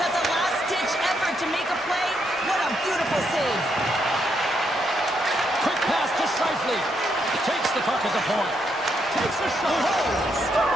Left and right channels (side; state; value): right; noise; rumble, 28 dB below the sound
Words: That's a last-ditch effort to make a play. What a beautiful save. Quick pass to Scheifele. Takes the puck at the point. Takes a shot.